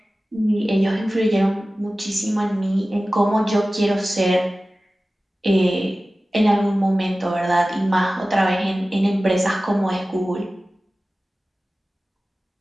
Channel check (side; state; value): both; normal; correlation 0.96